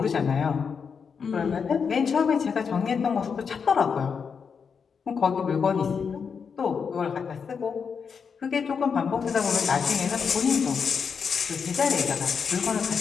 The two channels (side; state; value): right; quieter; 6.1 dB